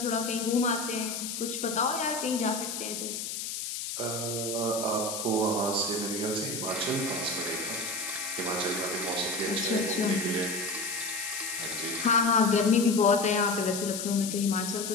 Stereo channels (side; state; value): left; noise; hiss, 5 dB below the sound